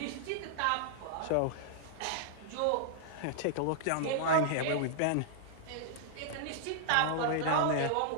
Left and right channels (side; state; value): both; different; correlation -0.01